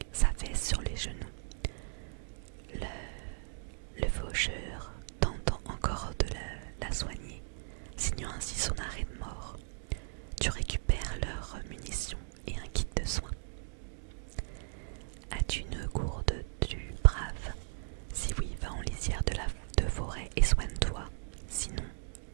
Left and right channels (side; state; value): left; silent; digital silence